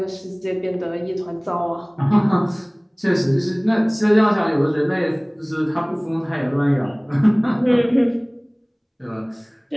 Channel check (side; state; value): both; identical; correlation 1.00